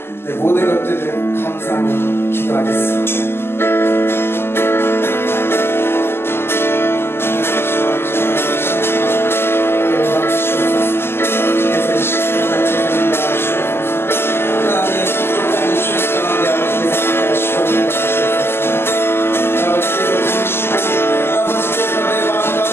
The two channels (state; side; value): late; right; 0.12 ms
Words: 내 모든 것들을 감사하며 기도하겠습니다.